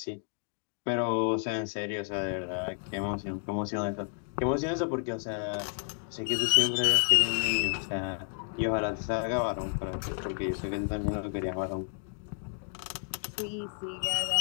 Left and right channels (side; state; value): right; silent; 57 dB below the other